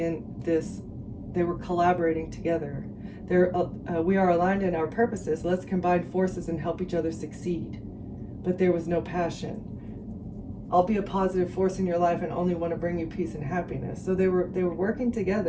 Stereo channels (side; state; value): both; identical; correlation 1.00